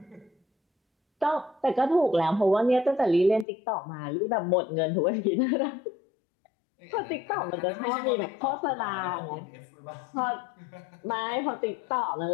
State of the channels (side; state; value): right; drops out; at 3.5 s